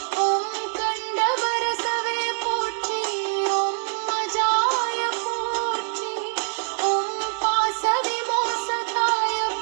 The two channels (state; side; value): silent; left; digital silence